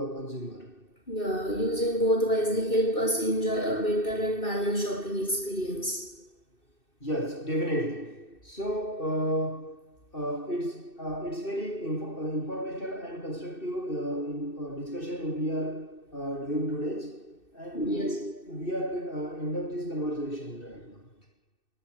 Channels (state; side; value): late; right; 2.6 ms